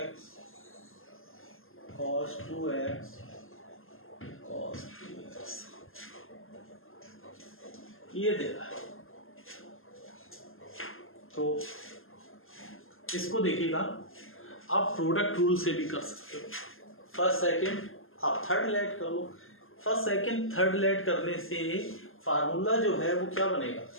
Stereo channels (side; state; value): right; late; 0.60 ms